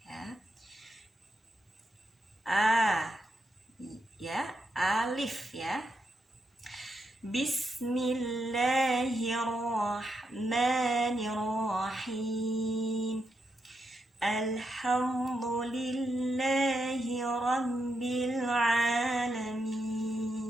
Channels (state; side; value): normal; both; correlation 0.83